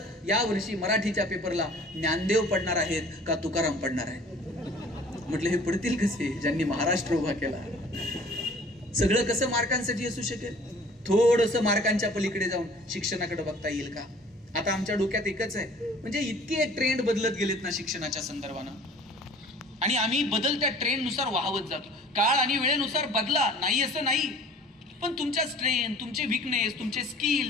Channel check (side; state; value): both; normal; correlation 0.50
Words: या वर्षी मराठीच्या पेपरला ज्ञानदेव पडणार आहेत का तुकाराम पडणार आहेत? म्हटलं हे पडतील कसे ज्यांनी महाराष्ट्र उभा केला. सगळं कसं मार्कांसाठी असू शकेल? थोडस मार्कांच्या पलीकडे जाऊन शिक्षणाकडे बघता येईल का? आता आमच्या डोक्यात एकच आहे, म्हणजे इतके ट्रेंड बदलत गेलेत ना शिक्षणाच्या संदर्भानं, आणि आम्ही बदलत्या ट्रेंडनुसार वाहवत जातो. काळ आणि वेळेनुसार बदला, नाही असं नाही, पण तुमच्या स्ट्रेंथ, तुमचे विकनेस, तुमचे